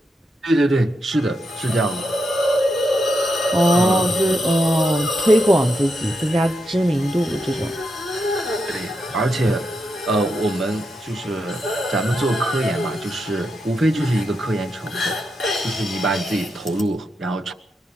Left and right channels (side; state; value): both; normal; correlation 0.84